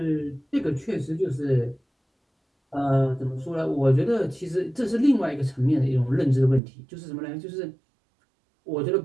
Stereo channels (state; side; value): drops out; left; at 6.6 s